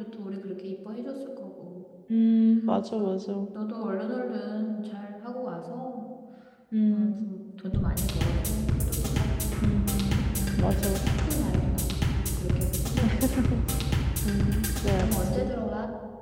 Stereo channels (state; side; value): identical; both; correlation 1.00